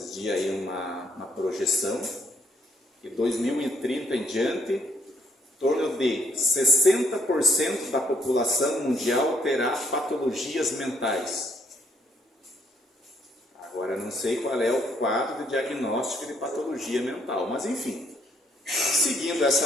dias aí uma projeção, que 2030 em diante, em torno de 60% da população mundial terá patologias mentais. Agora, não sei qual é o quadro de diagnóstico de patologia mental, mas enfim, seguindo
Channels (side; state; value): both; normal; correlation 0.68